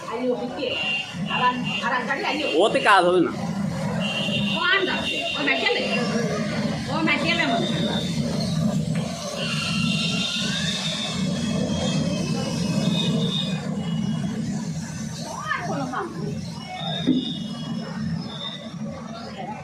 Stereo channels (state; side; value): identical; both; correlation 1.00